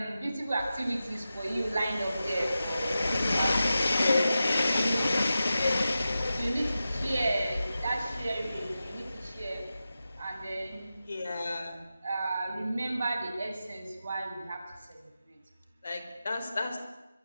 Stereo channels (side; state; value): both; inverted; correlation -0.92